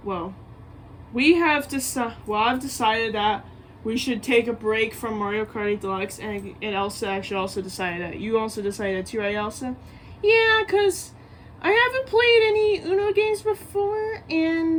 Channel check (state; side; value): identical; both; correlation 1.00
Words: I've decided that we should take a break from Mario Kart 8 Deluxe, and Elsa actually also decided that. You also decided that too, right, Elsa? Yeah, because I haven't played any Uno games before,